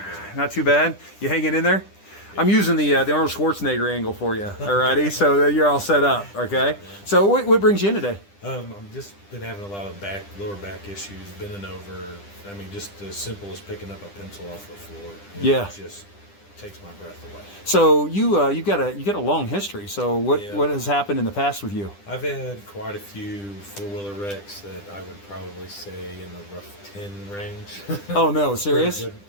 bad. Not too bad. You hanging in there? I'm using the Arnold Schwarzenegger angle for you. Alrighty, so you're all set up. Okay. So what brings you in today? I've just been having a lot of lower back issues, bending over. I mean, just as simple as picking up a pencil off the floor. It just takes my breath away. So you got a long history. So what has happened in the past with you? I've had quite a few four-wheeler wrecks that I would probably say in the rough 10 range. Oh no, serious?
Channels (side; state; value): right; late; 10 ms